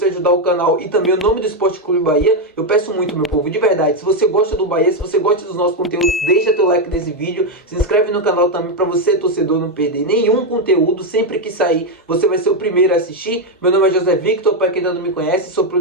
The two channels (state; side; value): normal; both; correlation 0.05